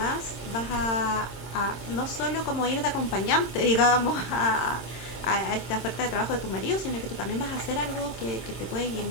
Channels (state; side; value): late; right; 26 ms